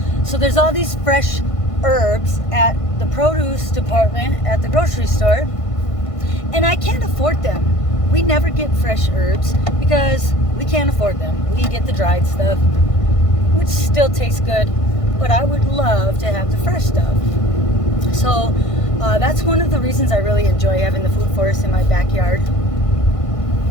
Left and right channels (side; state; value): right; late; 1.5 ms